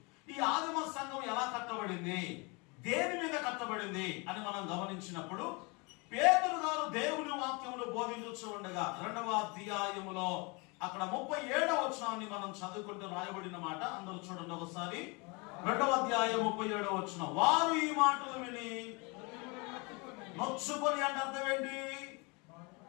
ఈ ఆదిమ సంఘం ఎలా కట్టబడింది, దేని మీద కట్టబడింది అని మనం గమనించినప్పుడు, పేతురు గారు దేవుని వాక్యమును బోధించు ఉండగా 2వ అధ్యాయములో అక్కడ 37వ వచనాన్ని మనం చదువుకుంటూ రాయబడిన మాట అందరూ చూడండి ఒకసారి. 2వ అధ్యాయం 37వ వచనం. వారు ఈ మాటలు విని నొచ్చుకొని అంటే అర్థం ఏంటి?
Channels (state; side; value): quieter; right; 29.2 dB